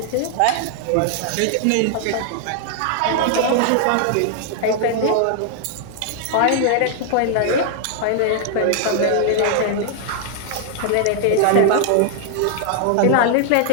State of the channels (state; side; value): different; both; correlation 0.00